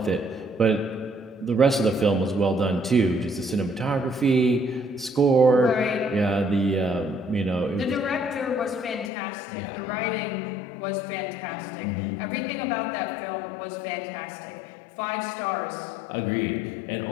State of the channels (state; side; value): drops out; right; at 9.1 s